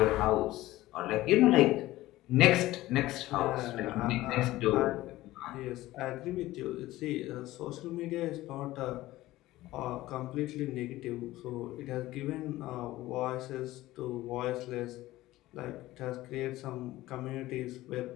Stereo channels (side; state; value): right; quieter; 16.9 dB